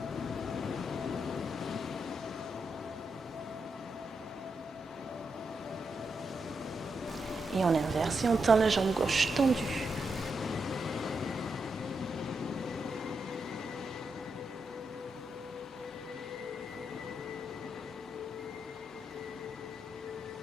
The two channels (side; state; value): both; normal; correlation 0.83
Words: Et on inverse et on tend la jambe gauche tendue.